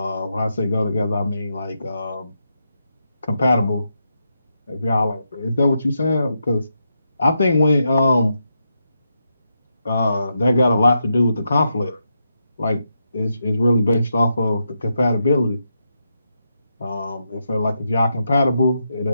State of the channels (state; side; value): inverted; both; correlation -0.84